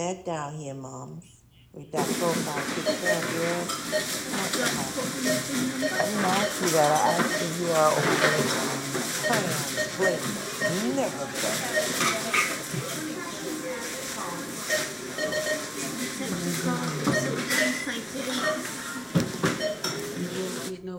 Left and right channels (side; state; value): both; identical; correlation 1.00